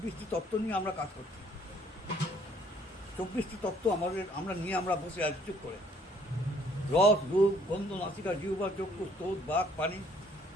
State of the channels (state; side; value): normal; both; correlation 0.62